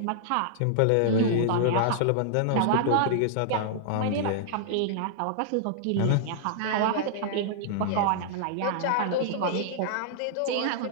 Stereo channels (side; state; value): both; different; correlation -0.01